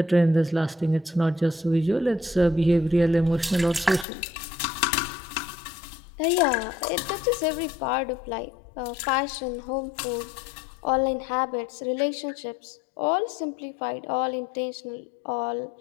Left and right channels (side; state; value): right; drops out; at 4.0 s